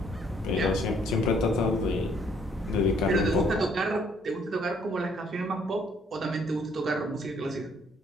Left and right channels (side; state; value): both; normal; correlation 0.65